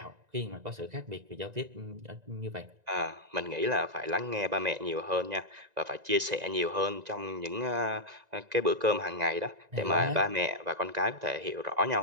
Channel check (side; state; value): left; late; 1.9 ms